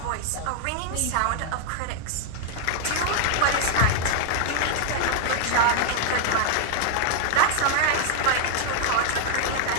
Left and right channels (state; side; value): different; both; correlation -0.01